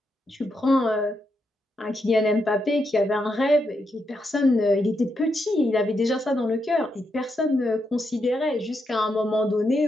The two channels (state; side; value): normal; both; correlation 0.82